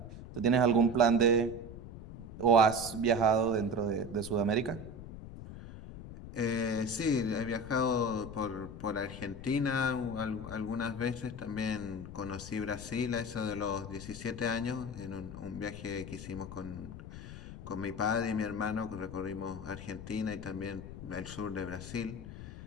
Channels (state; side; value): noise; left; rumble, 12 dB below the sound